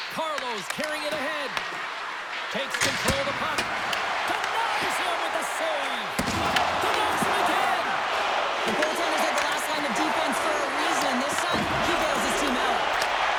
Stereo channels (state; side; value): identical; both; correlation 1.00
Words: Carlos carrying it ahead. Takes control of the puck. Denies him with the save. Denies him again. The goaltenders are the last line of defense for a reason. This time, he bails his team out.